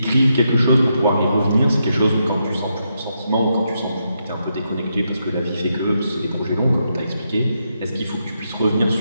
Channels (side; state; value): both; inverted; correlation -0.82